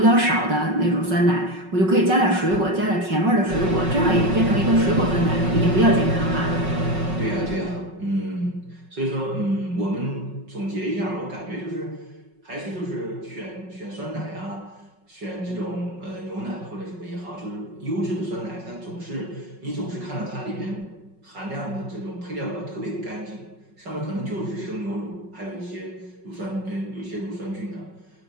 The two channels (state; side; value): late; left; 5.4 ms